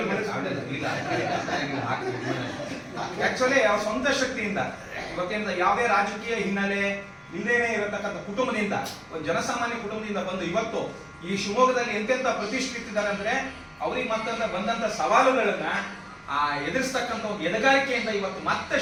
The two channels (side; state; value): both; identical; correlation 1.00